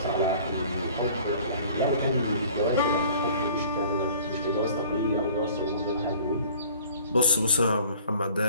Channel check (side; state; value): both; inverted; correlation -0.49